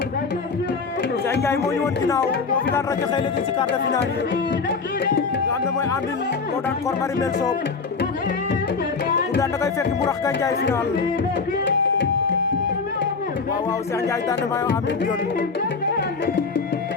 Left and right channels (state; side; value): quieter; right; 4.7 dB